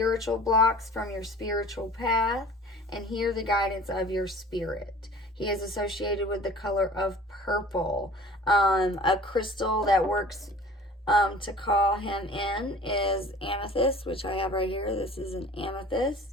blocks from your spiritual path, and hear the guidance of your spirit. He is associated with the color of purple. A crystal that works to call him in is amethyst, which I have right here. This is an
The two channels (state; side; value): normal; both; correlation 0.46